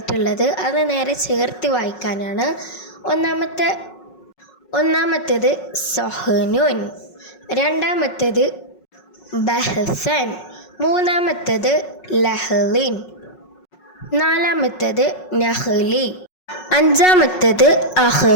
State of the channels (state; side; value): late; right; 5.4 ms